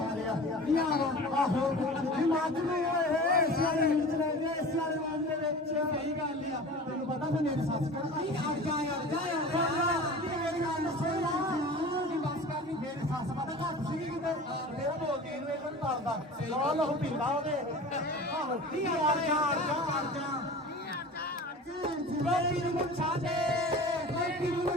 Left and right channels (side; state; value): both; normal; correlation 0.37